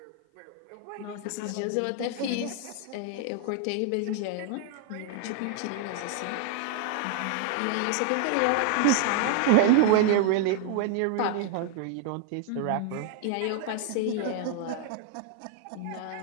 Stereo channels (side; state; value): both; different; correlation 0.00